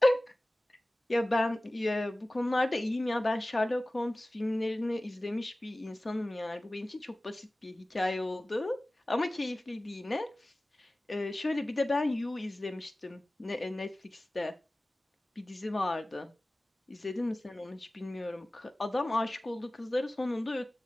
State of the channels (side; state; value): both; normal; correlation 0.97